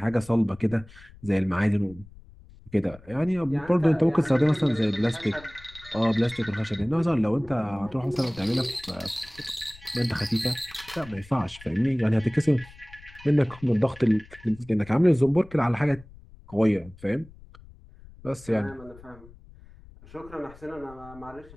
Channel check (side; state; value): left; noise; rumble, 21 dB below the sound